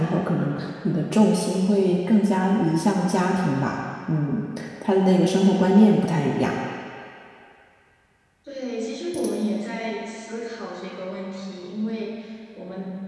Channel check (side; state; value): both; identical; correlation 1.00